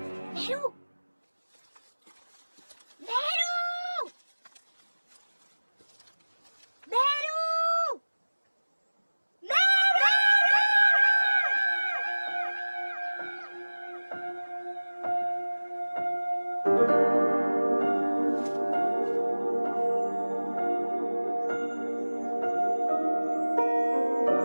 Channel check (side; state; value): both; inverted; correlation -1.00